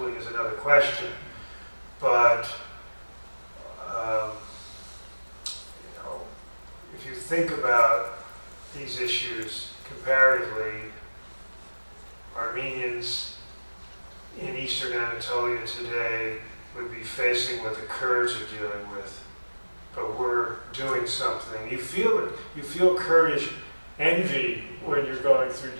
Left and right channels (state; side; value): inverted; both; correlation -1.00